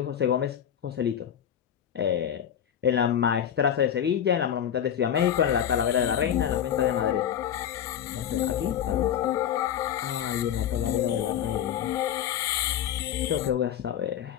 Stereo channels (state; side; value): quieter; right; 9.6 dB